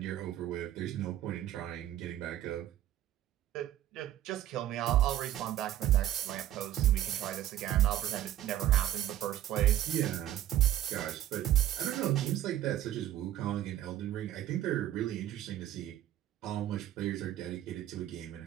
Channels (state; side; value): quieter; left; 12.6 dB